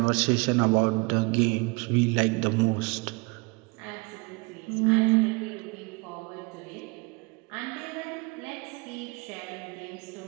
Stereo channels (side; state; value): left; quieter; 28.7 dB